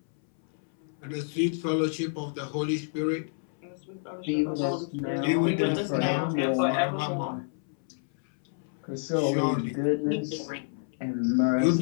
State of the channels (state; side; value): silent; right; 59 dB below the other